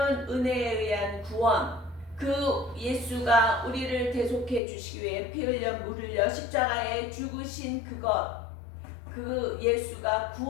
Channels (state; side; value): drops out; right; at 4.6 s